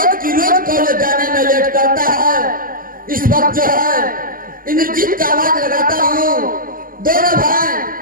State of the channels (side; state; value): left; late; 0.41 ms